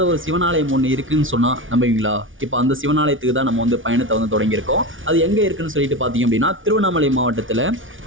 ஒரு சிவனாலயம் ஒன்று இருக்குன்னு சொன்னால் நம்புவீங்களா? இப்போ அந்த சிவனாலயத்துக்கு தான் நம்ம வந்து பயணத்தை வந்து தொடங்கியிருக்கோம். அது எங்கே இருக்குன்னு சொல்லிட்டு பார்த்தீங்க அப்படின்னா திருவண்ணாமலை மாவட்டத்தில்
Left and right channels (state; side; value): late; left; 0.57 ms